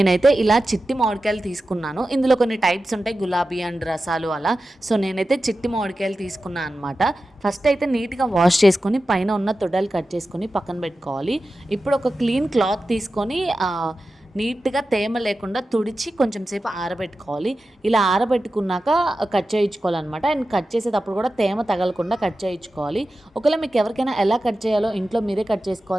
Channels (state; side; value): normal; both; correlation 0.93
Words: ఇలా చిట్టి మామిడికాయలు తీసుకున్నాను. ఇందులో కొన్ని టైప్స్ ఉంటాయి, గులాబీ అండ్ రసాలు అలా. సో నేనైతే చిట్టి మామిడికాయలు తీసుకున్నాను అనమాట. ఫస్ట్ అయితే నీట్గా వాష్ చేసుకొని పైన ఉన్న తొడలు కట్ చేసుకొని పక్కన పెట్టుకోవాలి. ఇప్పుడు ఒక క్లీన్ క్లాత్ తీసుకొని నీట్గా తేమ లేకుండా తుడిచి కొంచెం సేపు ఆరబెట్టుకోవాలి. ఇలా ఆరబెట్టుకున్నాక కట్ చేయించుకోవాలన్నమాట. అండ్ కట్ చేసేటప్పుడు కూడా తేమ తగలకుండా కట్ చేయించుకోవాలి. ఒకవేళ మీకు ఎవరికైనా ఎలా కట్ చేయాలో ఇంట్లో మీరే కట్